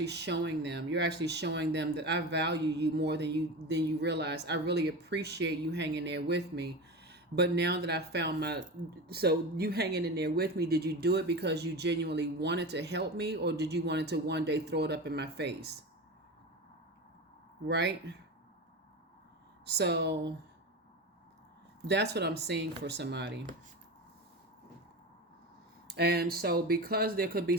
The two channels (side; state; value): both; normal; correlation 0.26